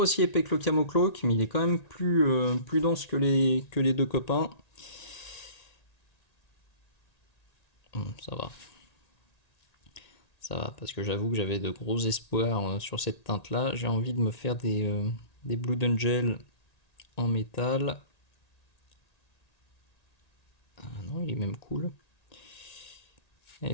aussi épais que le Camo Cloak, mais il est quand même plus dense que les deux copains. Ça va. Ça va, parce que j'avoue que j'avais de gros espoirs sur cette teinte-là. J'ai envie de me faire des Blood Angel en métal. Ah non, il est même cool.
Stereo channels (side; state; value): right; late; 1.9 ms